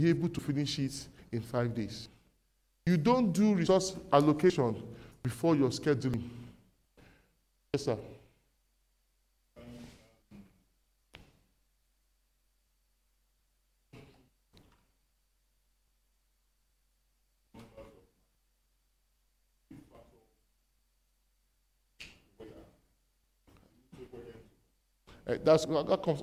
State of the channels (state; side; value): identical; both; correlation 1.00